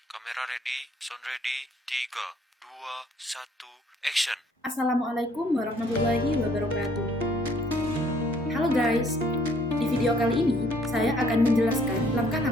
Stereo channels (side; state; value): both; normal; correlation 0.62